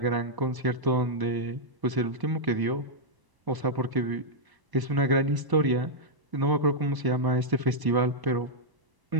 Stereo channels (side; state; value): left; late; 1.0 ms